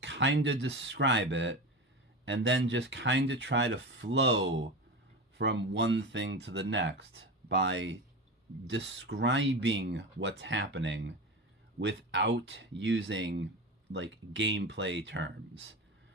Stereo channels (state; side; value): normal; both; correlation 0.25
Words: of describe it, and then just kind of try to flow from one thing to the next by describing what's happening without using like gameplay terms.